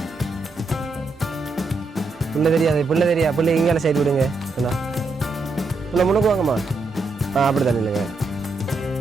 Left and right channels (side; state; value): left; quieter; 3.4 dB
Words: பிள்ளை தெரியாது, பிள்ளை தெரியா, பிள்ளை இங்கே சைடு விடுங்க. என்ன பிள்ளை முன்னுக்கு வாங்கம்மா. அப்படி தானே இல்லைங்க.